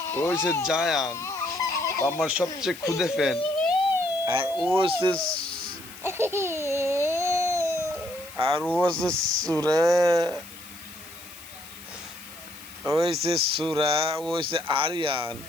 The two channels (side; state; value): left; noise; hiss, 18 dB below the sound